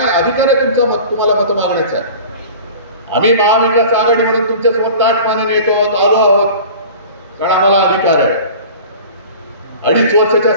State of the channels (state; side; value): inverted; both; correlation -0.40